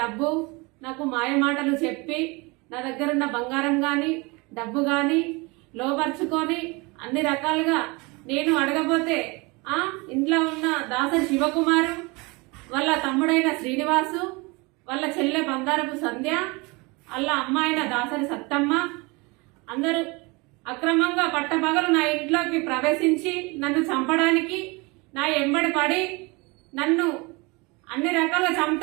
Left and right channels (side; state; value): left; quieter; 26.6 dB